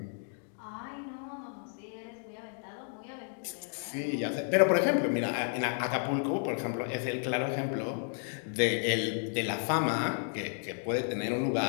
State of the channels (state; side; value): silent; right; 56 dB below the other